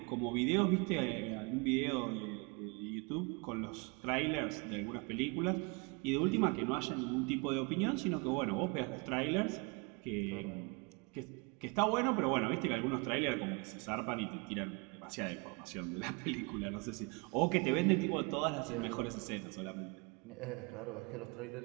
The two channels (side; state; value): left; quieter; 30.7 dB